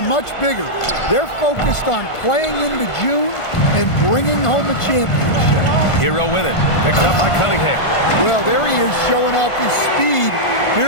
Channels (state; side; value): late; right; 1.5 ms